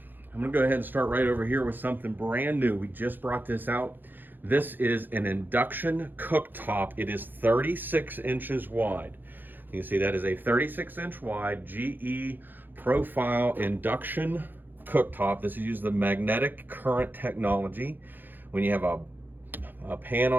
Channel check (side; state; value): left; late; 0.090 ms